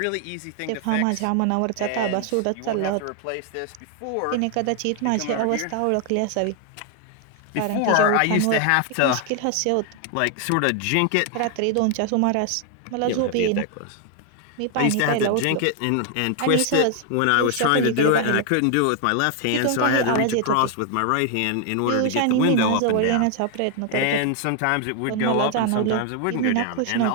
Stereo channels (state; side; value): different; both; correlation 0.00